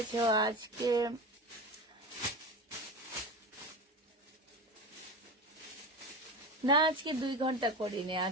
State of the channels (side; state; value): both; normal; correlation 0.25